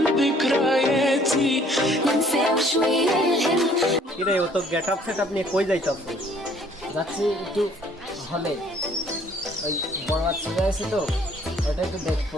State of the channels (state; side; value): normal; both; correlation 0.59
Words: ذكرياتي ننسى شوية الهم কিরে ও তো getup setup নিয়ে কই যাইতাছ? যাচ্ছি একটু হলে, ওই বড় বাচ্চা আছে তো, ওটা একটু দেখবো।